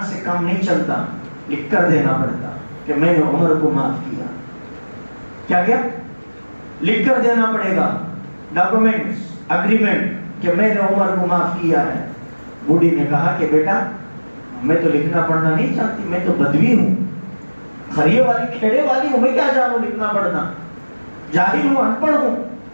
سے کام نہیں چلتا، لکھ کر دینا پڑتا کہ میں نے عمر کو معاف کیا۔ کیا لکھ کر دینا پڑے گا، ڈاکومنٹس، اگریمنٹ کہ میں نے عمر کو معاف کیا ہے۔ بوڑھی نے کہا کہ بیٹا میں تو لکھنا پڑھنا نہیں چاہتی، میں تو بدوی ہوں، خریے والی کھیڑے والی ہوں، میں کیا جانوں لکھنا پڑھنا، جاہل ہوں، ان پڑھ ہوں۔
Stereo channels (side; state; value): both; inverted; correlation -1.00